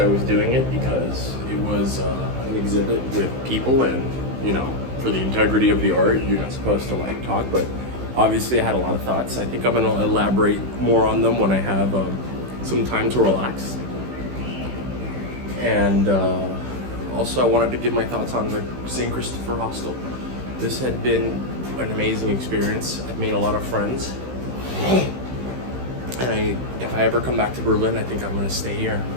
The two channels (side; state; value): left; late; 16 ms